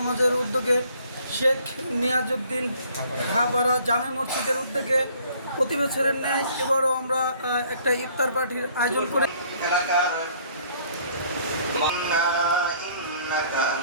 উদ্যোগে শেখ নিয়াজউদ্দিন খাপাড়া জামে মসজিদের উদ্যোগে প্রতি বছরের ন্যায় এবারও আমরা একটা ইফতার পার্টির আয়োজন করে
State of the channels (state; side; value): inverted; both; correlation -0.59